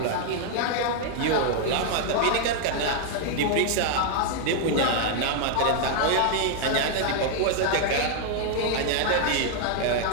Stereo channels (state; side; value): different; both; correlation 0.00